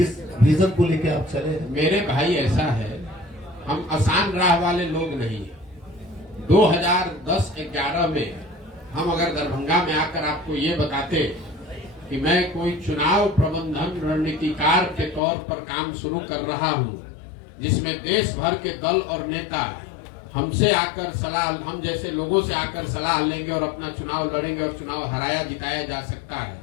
विजन को लेके आप चले हैं? मेरे भाई ऐसा है, हम आसान राह वाले लोग नहीं हैं। 2010-11 में हम अगर दरभंगा में आकर आपको ये बताते कि मैं कोई चुनाव प्रबंधन रणनीतिकार के तौर पर काम शुरू कर रहा हूं, जिसमें देश भर के दल और नेता हमसे आकर सलाह, हम जैसे लोगों से आकर सलाह लेंगे और अपना चुनाव लड़ेंगे और चुनाव हराया जिताया जा सकता है,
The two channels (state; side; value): drops out; right; at 15.2 s